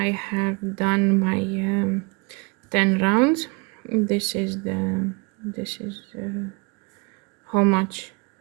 have done my 10 rounds. This is how much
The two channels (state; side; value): quieter; left; 29.7 dB